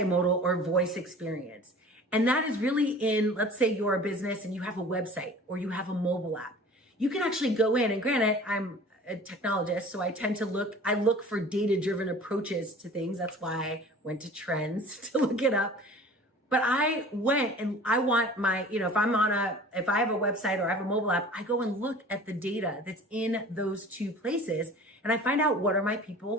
or voice experience. And that is really in, let's say you're a business and you have a website or you have a mobile app. You can actually go in, and granted, I'm a technologist, so I tend to look for data-driven approaches to things. That's why I went to Trends to look it up. But I went and I want my, if I have a website or I have a mobile app, I go and look at the data that's in those two places. And I find out, what are my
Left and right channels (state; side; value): normal; both; correlation 0.44